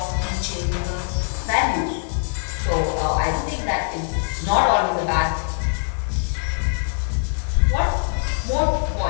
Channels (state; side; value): silent; right; 62 dB below the other